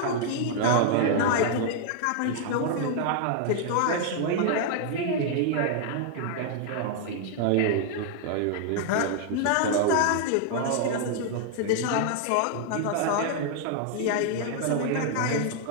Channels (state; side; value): different; both; correlation 0.00